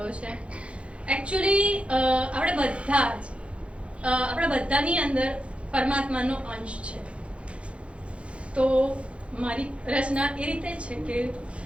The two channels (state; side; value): late; left; 0.060 ms